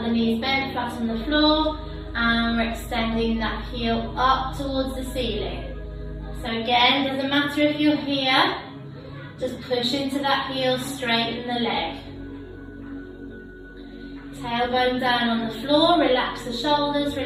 knees bent, flat on the floor. And we're extending that heel up towards the ceiling. So again, doesn't matter if you're here, just push into that heel, straighten the leg. Tailbone down on the floor, relax the shoulders,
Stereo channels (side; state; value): both; identical; correlation 1.00